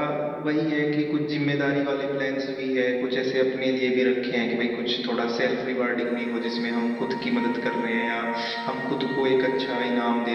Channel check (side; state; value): both; identical; correlation 1.00